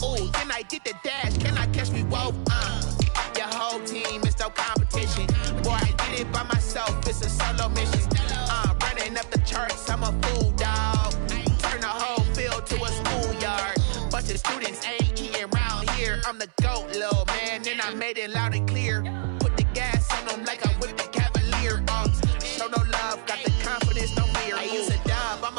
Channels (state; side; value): silent; left; 61 dB below the other